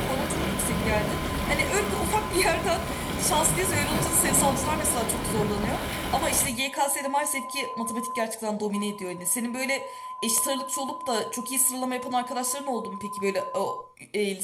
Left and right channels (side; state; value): both; identical; correlation 1.00